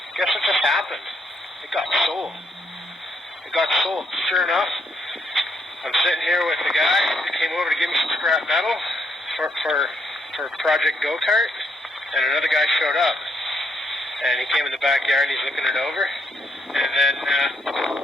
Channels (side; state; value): both; normal; correlation 0.73